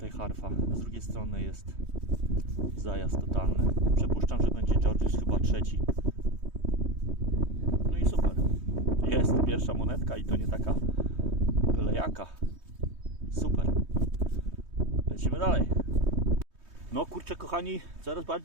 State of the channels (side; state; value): left; late; 3.2 ms